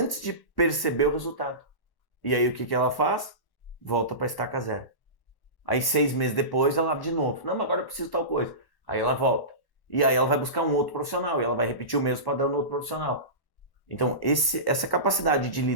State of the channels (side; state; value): right; late; 1.1 ms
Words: de perceber o resultado. E aí o que ela faz? Volta para a estaca zero. Aí 6 meses depois ela abre de novo. Não, mas agora eu preciso de tal coisa. Aí ela volta. E aí ela vai buscar um outro profissional. E ela vai repetir o mesmo padrão no outro profissional. Então essa capacidade de